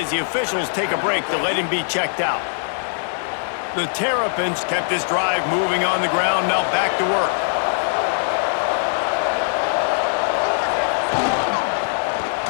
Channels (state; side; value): silent; right; 57 dB below the other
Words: the officials take a break to let him be checked out. The Terrapins kept this drive moving on the ground. Now back to work.